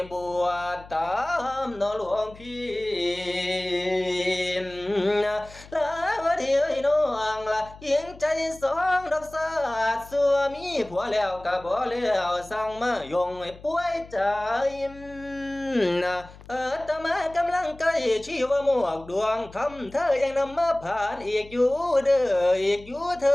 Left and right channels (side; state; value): left; noise; hum, 20 dB below the sound